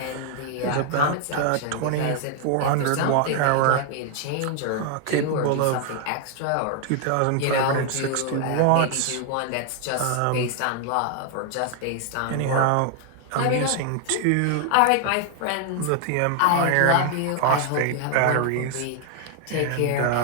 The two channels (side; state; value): both; different; correlation 0.00